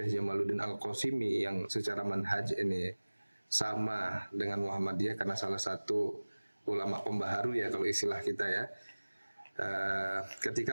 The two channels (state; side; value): inverted; both; correlation -1.00